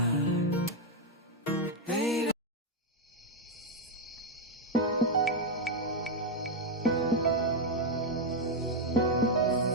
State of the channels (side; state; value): both; normal; correlation 0.02